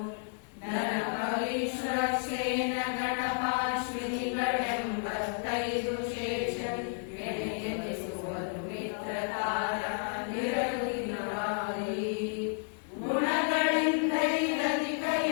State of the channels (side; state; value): right; silent; 57 dB below the other